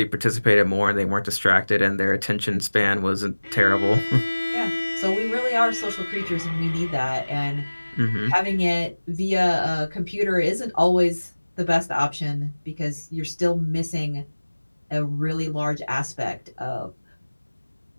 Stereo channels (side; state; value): both; inverted; correlation -1.00